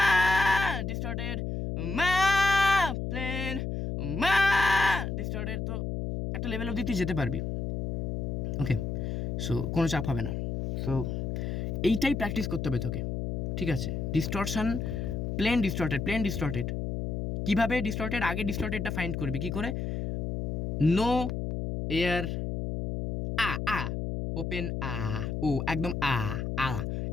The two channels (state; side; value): noise; left; hum, 2 dB below the sound